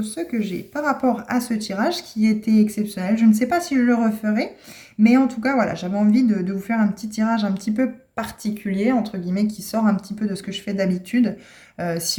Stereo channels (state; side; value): identical; both; correlation 1.00